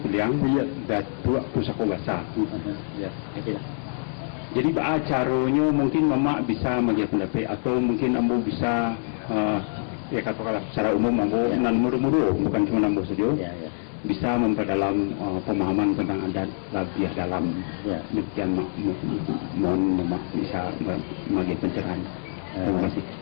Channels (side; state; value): right; silent; 62 dB below the other